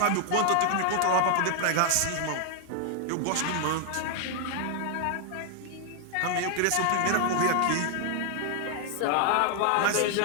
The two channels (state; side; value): different; both; correlation 0.00